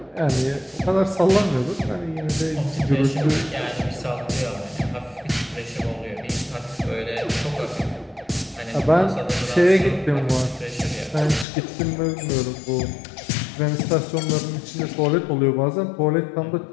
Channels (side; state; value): right; drops out; at 11.5 s